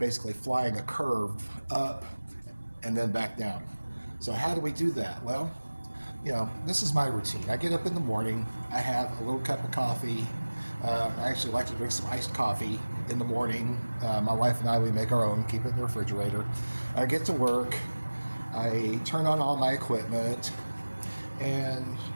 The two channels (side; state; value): both; inverted; correlation -1.00